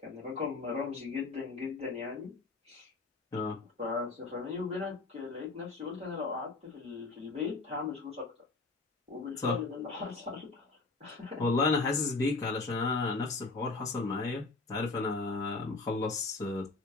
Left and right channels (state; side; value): quieter; right; 3.7 dB